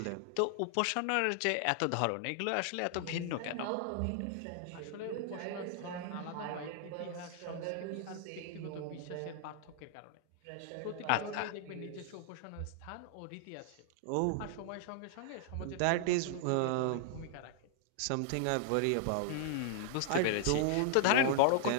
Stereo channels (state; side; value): different; both; correlation 0.00